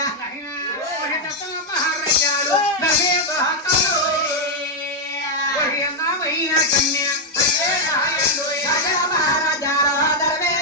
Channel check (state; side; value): normal; both; correlation 0.00